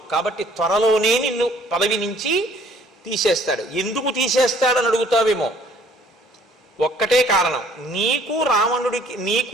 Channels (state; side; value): normal; both; correlation 0.58